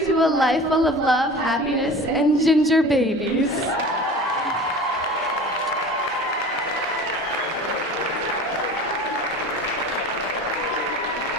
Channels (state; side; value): normal; both; correlation 0.38